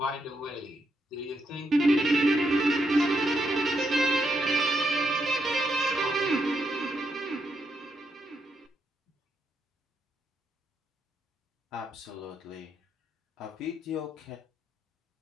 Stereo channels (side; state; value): both; normal; correlation 0.80